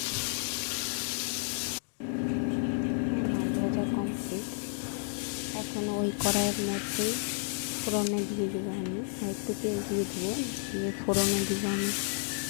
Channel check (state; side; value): silent; right; 57 dB below the other